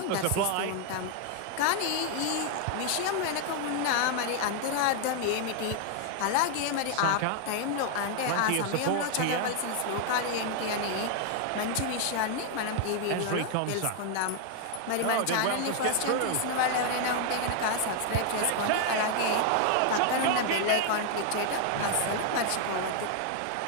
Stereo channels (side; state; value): both; different; correlation 0.00